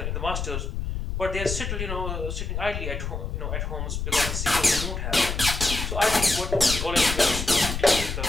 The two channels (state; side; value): noise; left; rumble, 4 dB below the sound